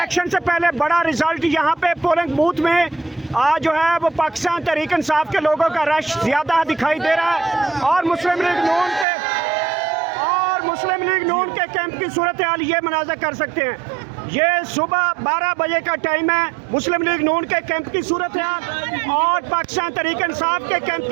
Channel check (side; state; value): left; drops out; at 9.1 s